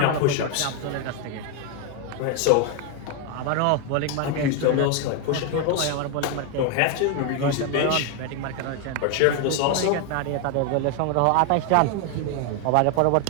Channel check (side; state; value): both; different; correlation 0.01